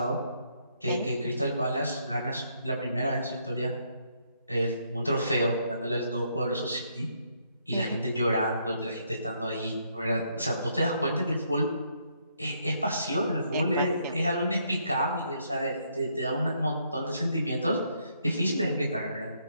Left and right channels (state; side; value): inverted; both; correlation -0.72